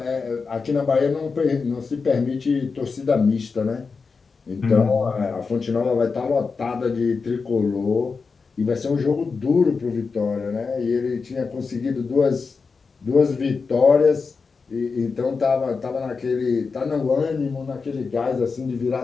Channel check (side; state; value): right; quieter; 4.8 dB